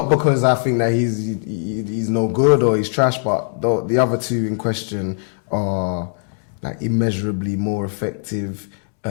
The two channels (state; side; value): silent; right; 66 dB below the other